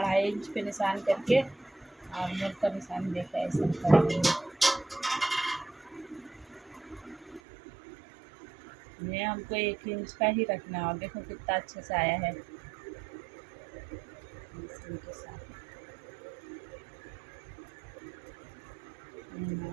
इंच पे निशान करके और मुड़ का निशान देकर ऐसा कर देंगे। ये हमको 1 इंच का ही रखना है और देखो कितना अच्छे से आया है इनके साथ।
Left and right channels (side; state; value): left; drops out; at 7.4 s